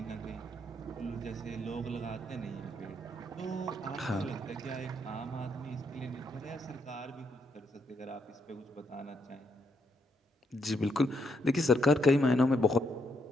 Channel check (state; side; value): normal; both; correlation 0.77